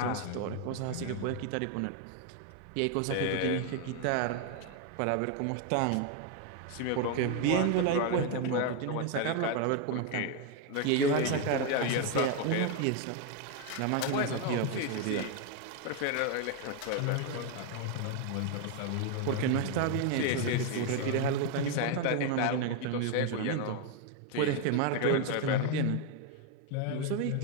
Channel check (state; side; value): different; both; correlation 0.01